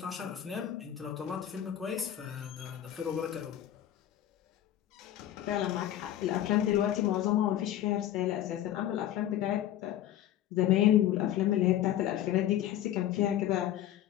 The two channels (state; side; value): quieter; right; 12.0 dB